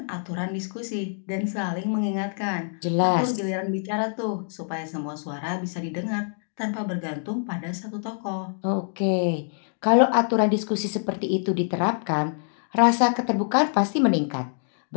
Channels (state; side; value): silent; right; digital silence